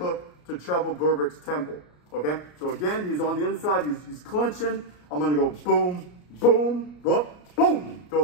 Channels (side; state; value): right; late; 33 ms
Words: to Trevor Berbick's temple, okay? So again, he's on the inside, he's clinching. I'm gonna go boom, boom, whoop, boom,